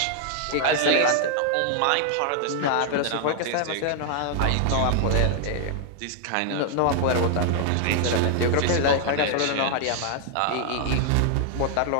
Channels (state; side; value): different; both; correlation 0.00